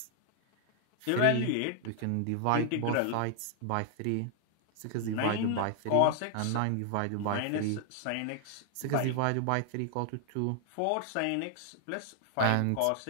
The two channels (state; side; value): different; both; correlation 0.00